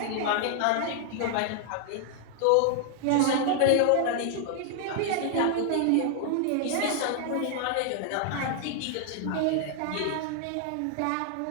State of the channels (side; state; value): both; different; correlation 0.00